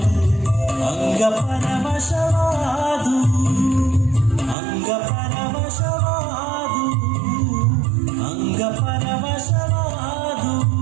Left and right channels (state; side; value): drops out; left; at 4.5 s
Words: ಅಂಗ ಪರವಶವಾದು ಅಂಗ ಪರವಶವಾದು ಅಂಗ ಪರವಶವಾದು